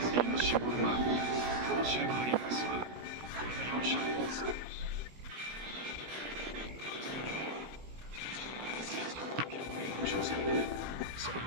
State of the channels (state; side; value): late; left; 17 ms